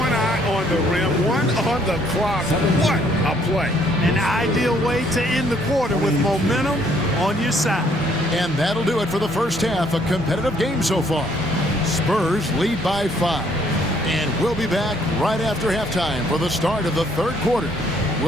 eye on the rim, one on the clock. What a play. An ideal way to end the quarter with momentum on your side. And that'll do it for the first half. A competitive game so far. Spurs lead by 5. And we'll be back right after halftime for the start of the third quarter.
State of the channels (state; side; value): normal; both; correlation 0.65